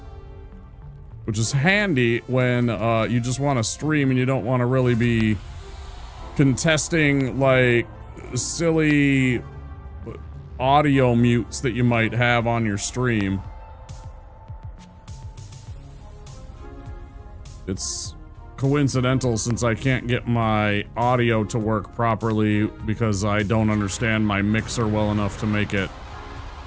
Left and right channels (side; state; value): both; identical; correlation 1.00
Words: Which is handy when you just want to stream and you don't want to really be contesting like silly audio mutes that you might have on your stream. It's coincidental since I can't get my audio to work properly because I don't understand my mixer well enough to make it